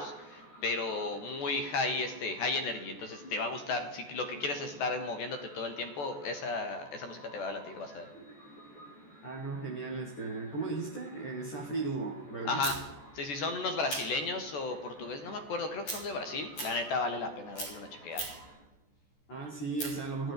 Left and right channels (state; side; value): late; right; 14 ms